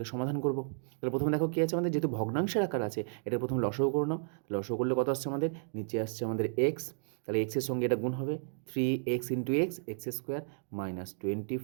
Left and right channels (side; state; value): left; silent; digital silence